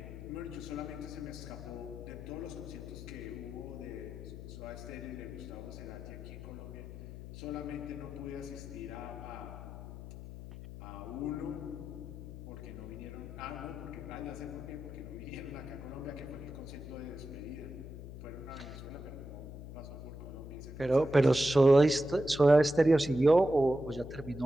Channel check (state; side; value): noise; left; hum, 11 dB below the sound